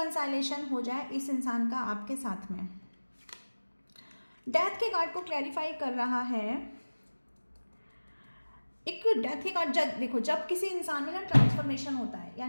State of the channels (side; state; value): both; inverted; correlation -1.00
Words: हो जाए इस इंसान का आपके साथ में। डेथ के कार्ड को क्लैरिफाई कर रहा है, एक डेथ के कार्ड। जब देखो, जब किसी इंसान में ना ट्रांसफॉर्मेशन होता है,